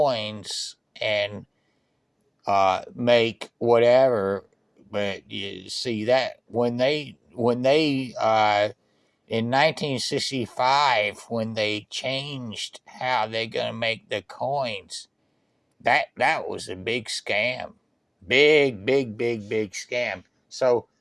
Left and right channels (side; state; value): both; identical; correlation 1.00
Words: and make whatever. But you see that when they in 1965, when they changed how they're going to make the coins, that was a big scam. Big scam. So